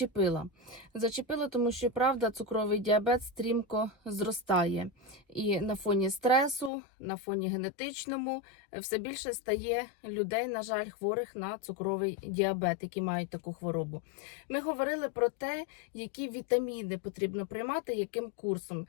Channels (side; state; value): right; drops out; at 6.7 s